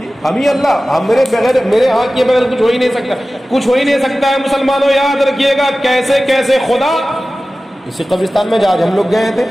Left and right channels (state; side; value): normal; both; correlation 0.96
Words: ہم ہی اللہ, ہم میرے ہاتھ کے بغیر کچھ ہو ہی نہیں سکتا, کچھ ہو ہی نہیں سکتا ہے. مسلمانوں یاد رکھیے گا کیسے کیسے خدا اسی قبرستان میں آج ہم لوگ گئے تھے